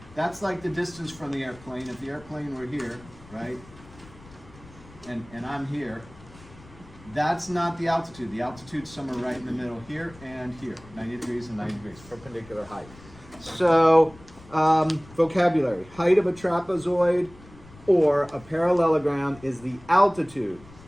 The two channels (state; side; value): noise; left; rumble, 22 dB below the sound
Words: that's like the distance from the airplane. If the airplane were here, right, and I'm here, that's not the altitude. The altitude's somewhere right in the middle here and here, 90 degrees and 90 degrees, perpendicular height. So, vocabulary. Height of a trapezoid or a parallelogram is the altitude.